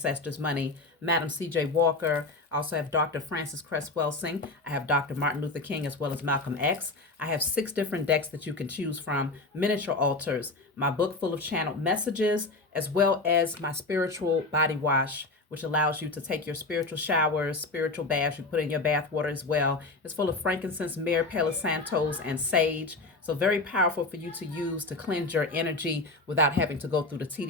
money: Madam C.J. Walker. I also have Dr. Francis Cresswell Singh. I have Dr. Martin Luther King, as well as Malcolm X. I have 6 different decks that you can choose from, miniature altars, my book full of channeled messages, as well as my spiritual body wash, which allows you to take your spiritual showers, spiritual baths. You put in your bath water as well. It's full of frankincense, myrrh, palo santos, and sage. So very powerful for you to use to cleanse your energy without having to go through the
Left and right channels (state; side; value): quieter; right; 3.2 dB